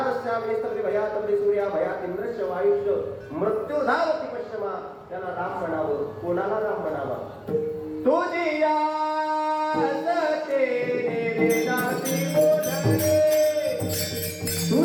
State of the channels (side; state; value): both; identical; correlation 1.00